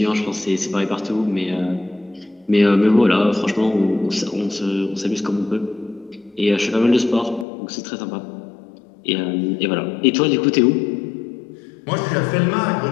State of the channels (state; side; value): drops out; right; at 7.5 s